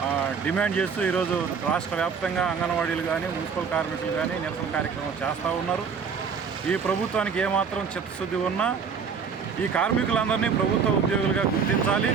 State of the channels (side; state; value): left; quieter; 6.1 dB